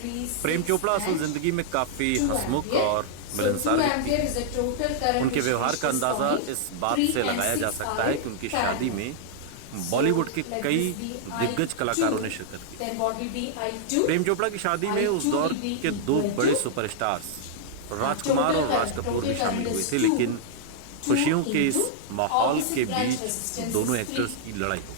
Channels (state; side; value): different; both; correlation -0.01